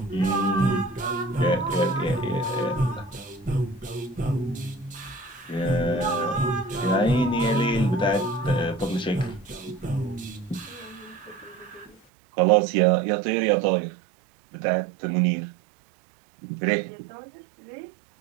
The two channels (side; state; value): left; drops out; at 12.0 s